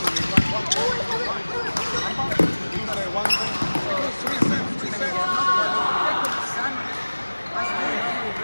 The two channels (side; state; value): both; inverted; correlation -1.00